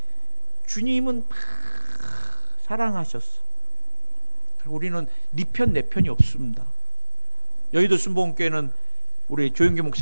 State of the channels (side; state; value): both; inverted; correlation -1.00